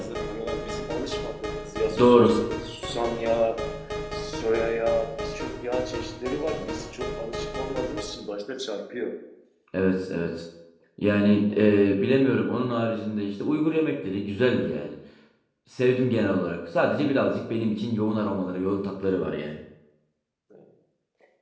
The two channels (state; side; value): identical; both; correlation 1.00